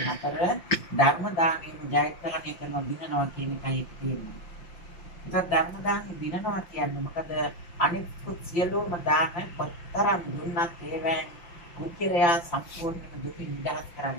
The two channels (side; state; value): right; late; 5.8 ms